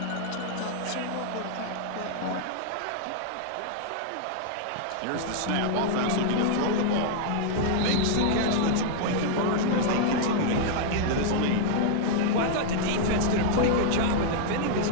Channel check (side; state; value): both; different; correlation -0.01